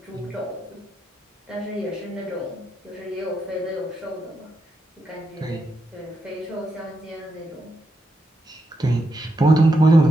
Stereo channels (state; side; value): normal; both; correlation 0.83